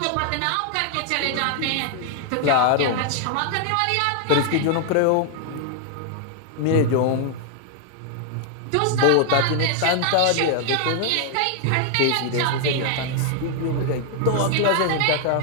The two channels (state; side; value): different; both; correlation 0.00